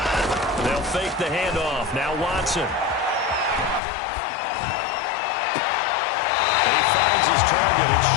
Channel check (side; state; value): right; drops out; at 3.8 s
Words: They'll fake the handoff. Now Watson. His target, it's